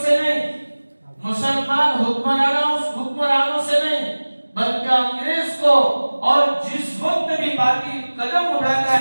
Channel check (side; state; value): both; inverted; correlation -1.00